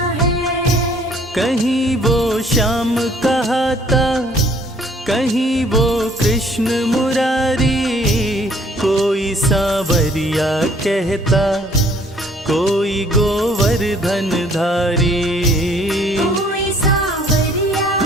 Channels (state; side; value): normal; both; correlation 0.59